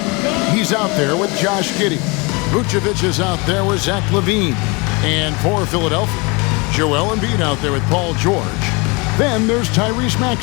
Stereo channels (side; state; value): right; quieter; 28.3 dB